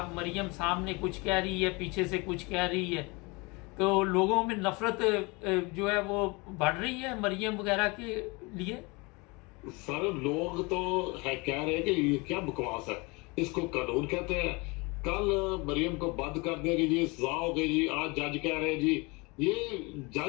مریم سامنے کچھ کہہ رہی ہے، پیچھے سے کچھ کہہ رہی ہے، تو لوگوں میں نفرت جو ہے وہ بڑھ رہی ہے مریم وغیرہ کے لیے؟ سر لوگ تو کہہ رہے ہیں کہ یہ کیا بکواس ہے، اس کو قانون کہتے ہیں، کل مریم کو بند کر دے گی جی، سزا ہو گئی جی، آج جج کہہ رہے ہیں جی، یہ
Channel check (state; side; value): quieter; right; 27.1 dB